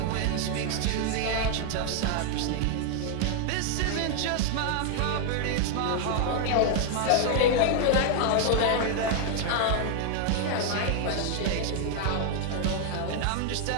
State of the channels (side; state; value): both; different; correlation 0.00